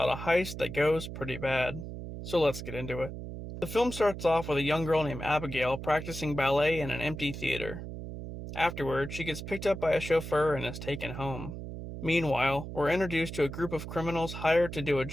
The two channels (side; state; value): right; noise; hum, 8 dB below the sound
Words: a heist that goes pretty bad. So let's get into it. The film starts off with a young girl named Abigail practicing ballet in an empty theater. Afterward, she gets picked up by a chauffeur and is taken home. Meanwhile, we're introduced to a group of criminals hired to do a